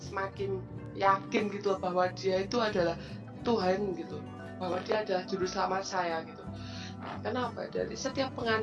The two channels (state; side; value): identical; both; correlation 1.00